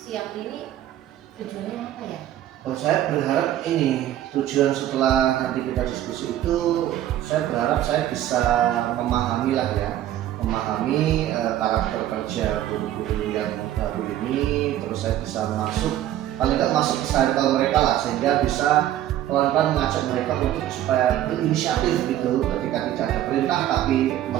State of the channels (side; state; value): left; quieter; 12.6 dB